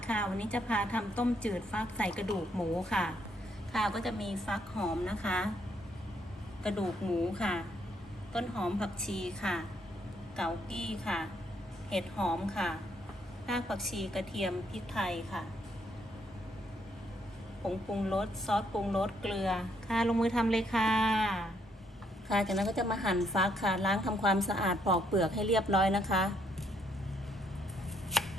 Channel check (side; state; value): both; normal; correlation 0.72